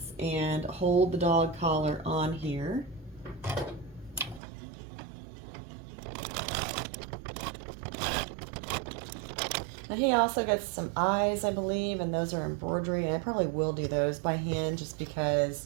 and hold the dog collar on here. Now he also gets some eyes, I believe, and those are embroidery, and I probably will do those by hand just because,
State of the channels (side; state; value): left; drops out; at 4.4 s